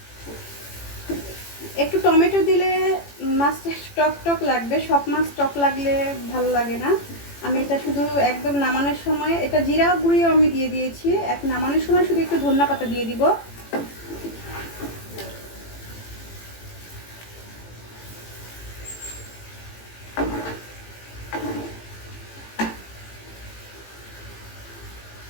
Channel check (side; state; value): right; late; 18 ms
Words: একটু টমেটো দিলে মাছটা টক টক লাগবে, সব মাছ টক লাগলে ভালো লাগে না। আমি এটা শুধু একদম নামানোর সময়, এটা জিরা গুঁড়িও আমি দিয়ে দিয়েছি, এক নামানোর সময় শুধু একটু ধনিয়া পাতা দিয়ে দিব।